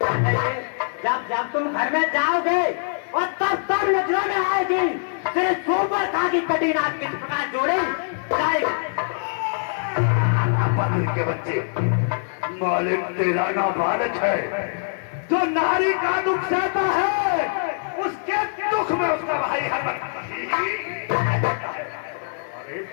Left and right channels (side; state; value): right; silent; 63 dB below the other